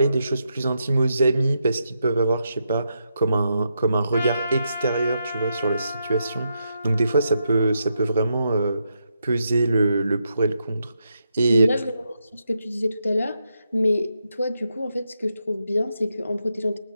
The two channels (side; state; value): both; inverted; correlation -0.82